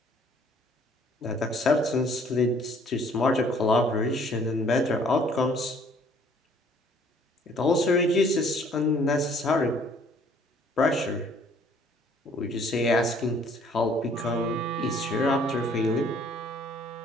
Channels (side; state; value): both; normal; correlation 0.59